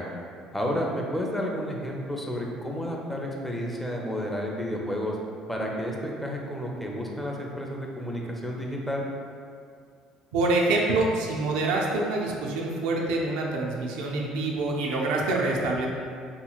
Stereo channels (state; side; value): normal; both; correlation 0.57